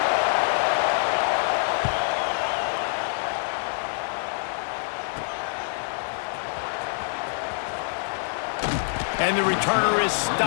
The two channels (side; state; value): right; silent; digital silence